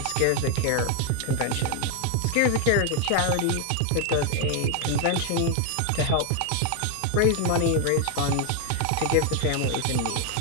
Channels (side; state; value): both; different; correlation 0.01